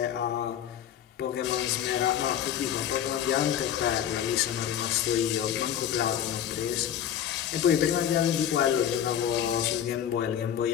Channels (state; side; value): quieter; right; 9.9 dB